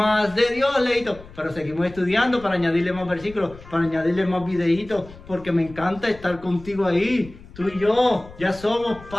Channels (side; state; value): left; noise; rumble, 19 dB below the sound